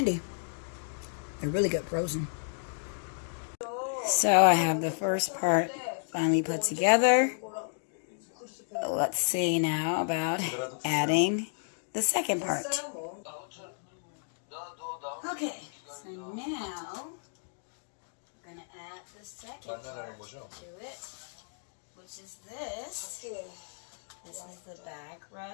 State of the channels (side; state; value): right; silent; digital silence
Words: They're really good frozen. So I have the first part finally put together. Let's see now about adding the second part. Okay, so now I'm going to add the second part to it, which is this. This is the back